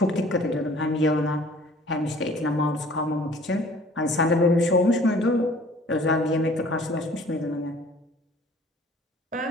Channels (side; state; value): both; normal; correlation 0.52